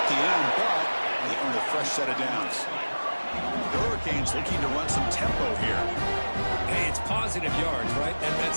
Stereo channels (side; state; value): both; inverted; correlation -1.00